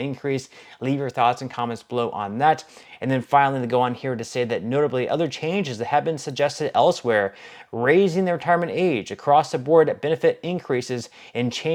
Leave your thoughts and comments below on that. And then finally, they go on here to say that notably other changes that have been suggested elsewhere, raising the retirement age, across the board benefit increases, and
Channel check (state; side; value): identical; both; correlation 1.00